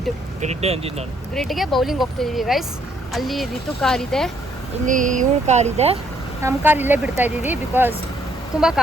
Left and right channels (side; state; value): both; normal; correlation 0.69